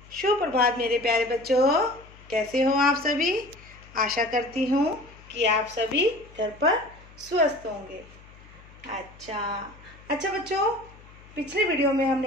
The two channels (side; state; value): left; noise; hum, 22 dB below the sound